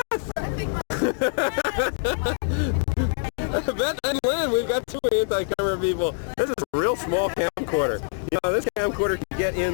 Beth and Lynn, we've got two anti-camera people. This is a real small camcorder. You know, this camcorder can get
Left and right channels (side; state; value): right; silent; digital silence